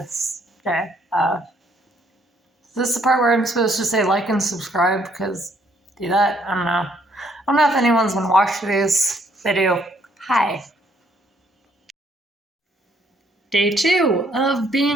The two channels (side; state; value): both; normal; correlation 0.67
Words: day. This is the part where I'm supposed to say like and subscribe, because do that? I don't know. I don't know if anyone's gonna watch these. If they do, hi. Day 2 of